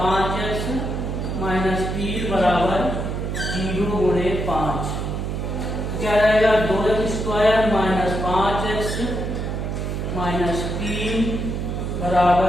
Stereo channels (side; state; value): right; noise; hum, 3 dB below the sound